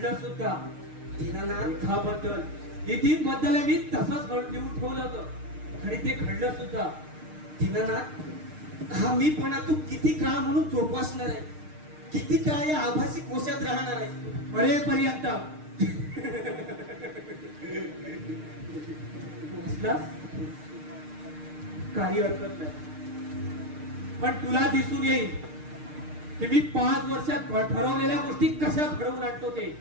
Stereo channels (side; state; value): left; late; 6.5 ms